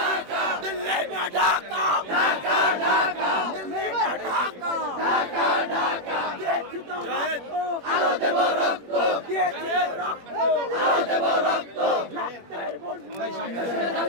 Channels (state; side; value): late; left; 21 ms